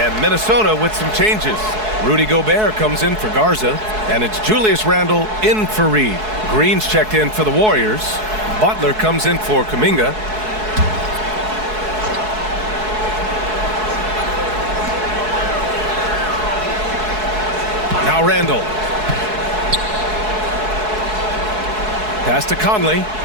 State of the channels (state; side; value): late; left; 4.7 ms